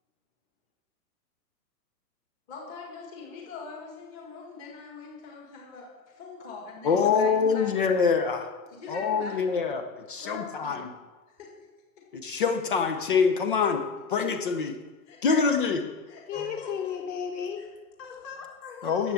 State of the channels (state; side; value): quieter; right; 5.3 dB